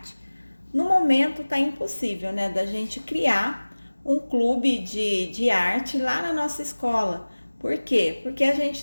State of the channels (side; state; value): both; inverted; correlation -1.00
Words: No momento está impossível, da gente criar um clube de arte lá na nossa escola. Por quê? Porque a gente